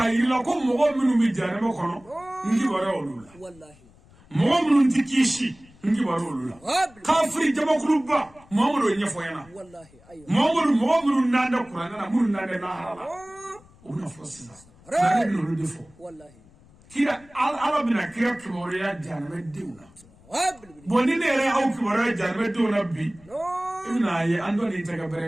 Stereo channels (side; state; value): left; noise; rumble, 26 dB below the sound